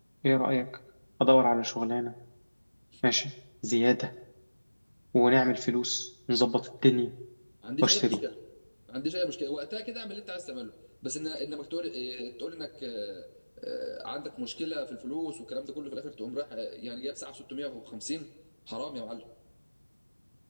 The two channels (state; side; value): inverted; both; correlation -1.00